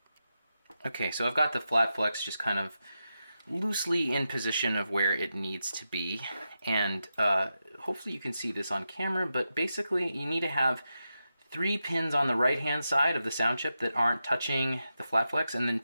Okay, so I've got the flat flex just kind of loosely in position of where it needs to be, and hopefully you can see this on camera, but basically you need to have 3 pins on the right hand side of the sound chip that aren't touching the flat flex, and then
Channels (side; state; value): both; inverted; correlation -0.89